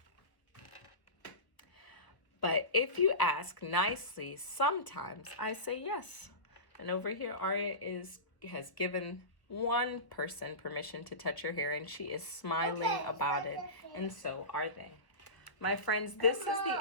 But if you ask nicely, sometimes I say yes. And over here, Aria has given one person permission to touch her hair, and she is smiling about it, and so are they. My friends, this is the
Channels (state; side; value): late; right; 1.0 ms